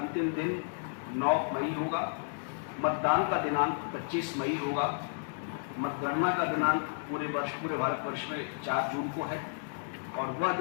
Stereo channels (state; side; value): silent; right; digital silence